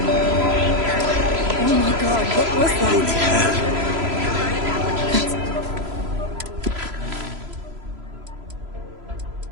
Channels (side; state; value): left; late; 3.0 ms